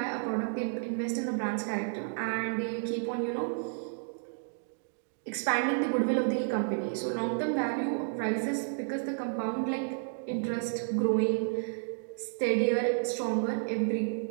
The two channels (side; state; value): left; silent; digital silence